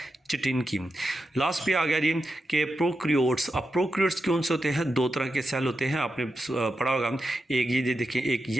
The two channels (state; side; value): normal; both; correlation 0.88